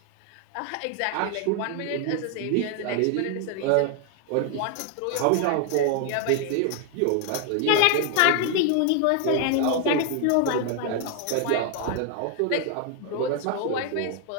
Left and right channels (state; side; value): different; both; correlation 0.00